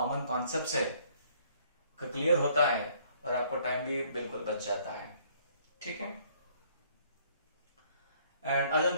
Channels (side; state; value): both; inverted; correlation -0.62